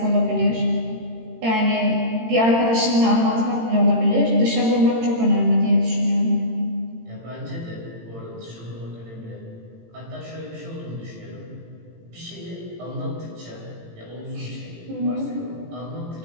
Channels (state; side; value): late; left; 18 ms